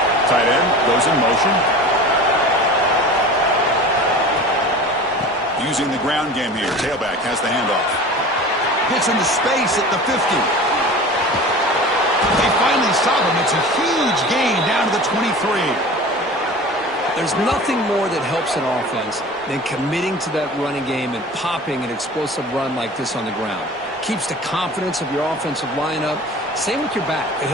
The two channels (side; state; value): both; normal; correlation 0.38